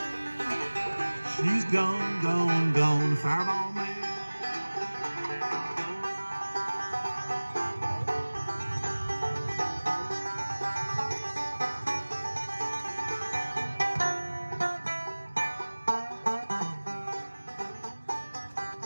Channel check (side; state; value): both; inverted; correlation -1.00